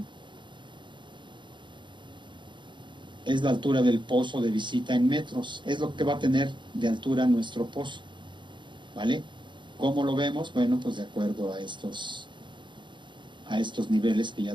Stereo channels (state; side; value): late; left; 0.23 ms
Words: es la altura del pozo de visita en metros, es lo que va a tener de altura nuestro pozo, ¿vale? ¿Cómo lo vemos? Bueno, pues de acuerdo a estos niveles que